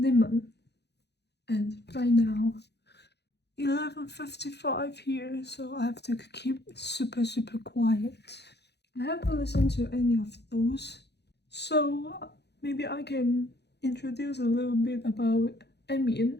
And right now 11:55 here, so I have to keep super quiet. I haven't listened to any of those, so maybe I can introduce a little bit about Emian.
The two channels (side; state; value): right; late; 0.49 ms